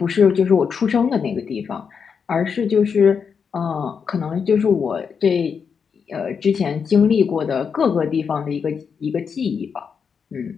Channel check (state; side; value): quieter; right; 6.3 dB